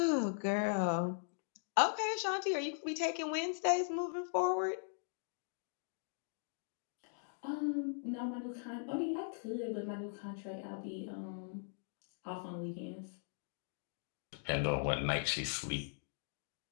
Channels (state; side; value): silent; right; digital silence